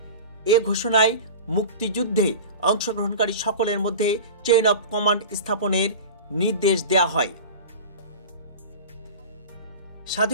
এ ঘোষণায় মুক্তিযুদ্ধে অংশগ্রহণকারী সকলের মধ্যে চেইন অফ কমান্ড স্থাপনের নির্দেশ দেওয়া হয়।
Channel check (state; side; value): inverted; both; correlation -0.33